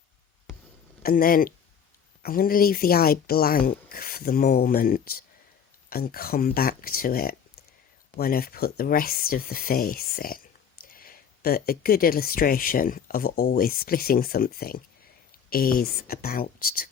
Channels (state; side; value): quieter; right; 7.6 dB